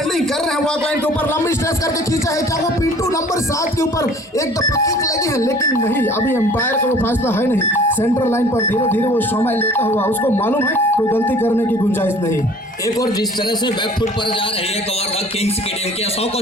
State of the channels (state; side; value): normal; both; correlation 0.50